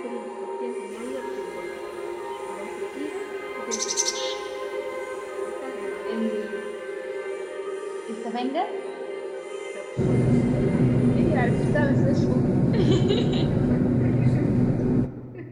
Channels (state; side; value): identical; both; correlation 1.00